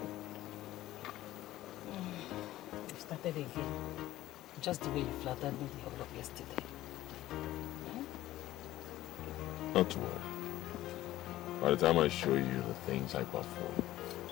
You started again. Just the way you flattered me the whole of yesterday. Not to worry. By the time I show you the things I perform,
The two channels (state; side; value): quieter; right; 15.1 dB